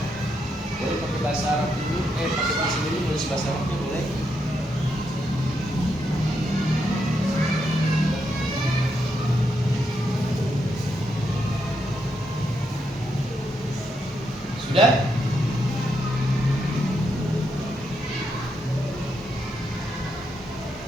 Boleh pakai bahasa Arab dulu, pakai PC dulu, nulis bahasa Arabnya boleh. Sudah?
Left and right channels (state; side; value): normal; both; correlation 0.81